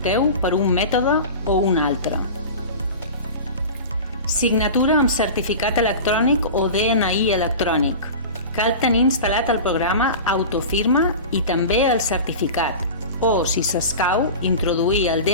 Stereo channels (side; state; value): both; inverted; correlation -0.32